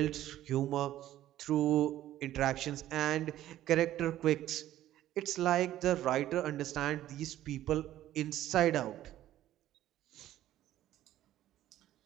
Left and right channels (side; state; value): left; quieter; 13.4 dB